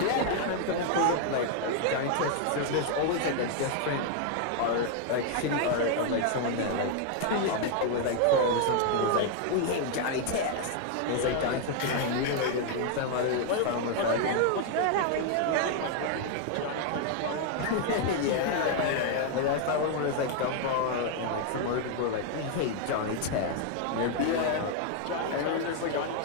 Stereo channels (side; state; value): both; different; correlation 0.00